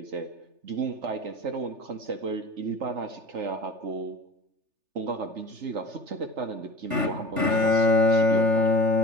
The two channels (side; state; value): left; late; 3.3 ms